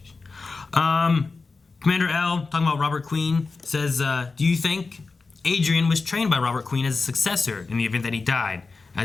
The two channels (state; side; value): quieter; right; 4.1 dB